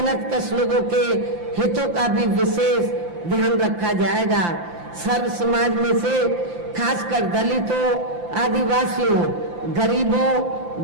लोगों के हितों का भी विशेष ध्यान रखा जाएगा। सर्व समाज में से खासकर दलितों, आदिवासियों, गरीबों,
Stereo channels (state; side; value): late; left; 5.8 ms